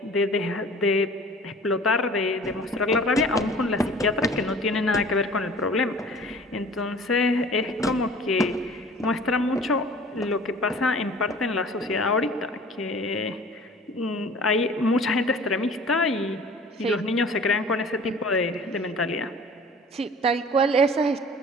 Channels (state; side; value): normal; both; correlation 0.46